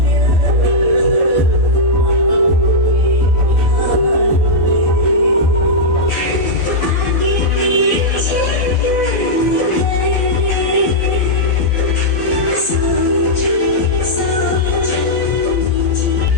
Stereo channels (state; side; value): late; right; 12 ms